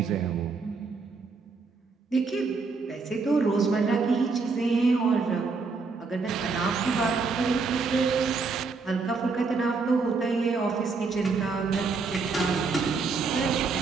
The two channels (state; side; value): quieter; left; 4.5 dB